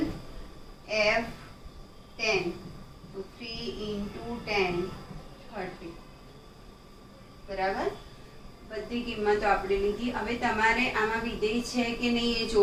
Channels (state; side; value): identical; both; correlation 1.00